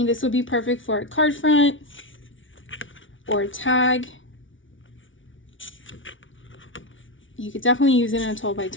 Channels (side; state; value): right; late; 0.56 ms